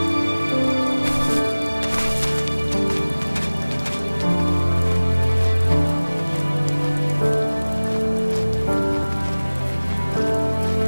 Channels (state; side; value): inverted; both; correlation -1.00